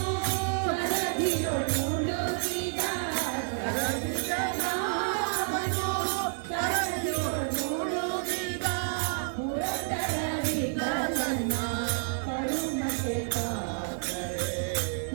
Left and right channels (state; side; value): silent; left; 58 dB below the other